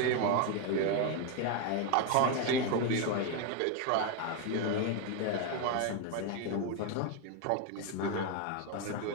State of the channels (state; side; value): different; both; correlation 0.01